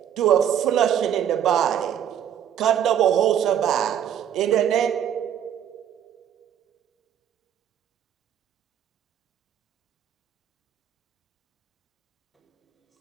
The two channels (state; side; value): quieter; left; 9.6 dB